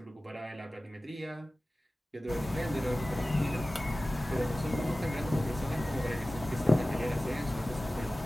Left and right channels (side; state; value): both; normal; correlation 0.96